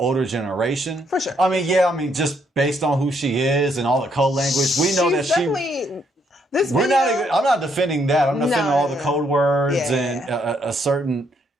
generation. For sure. I mean, just based on who she is and all the code language, we know that I'm not defending that. I'm defending all the code words and a certain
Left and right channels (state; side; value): normal; both; correlation 0.72